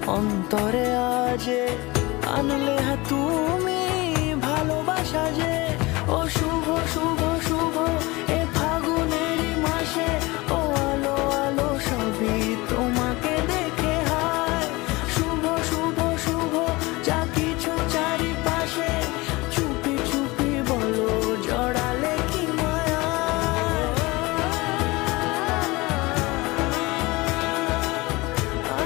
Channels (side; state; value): right; quieter; 22.7 dB